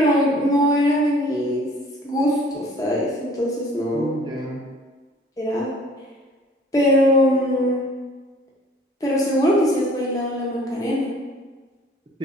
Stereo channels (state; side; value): normal; both; correlation 0.53